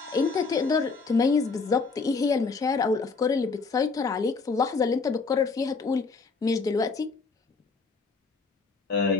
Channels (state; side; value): quieter; right; 4.4 dB